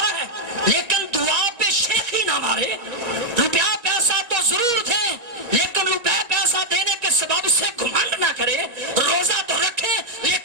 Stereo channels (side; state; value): left; late; 2.0 ms